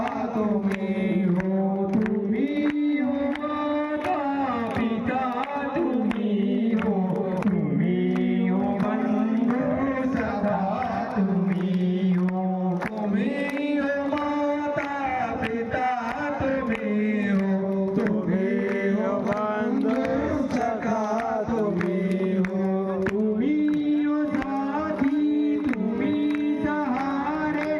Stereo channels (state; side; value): identical; both; correlation 1.00